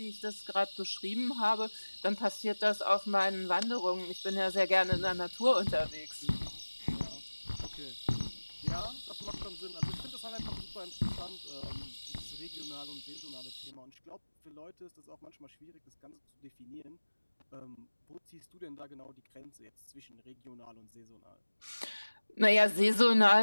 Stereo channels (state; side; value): inverted; both; correlation -1.00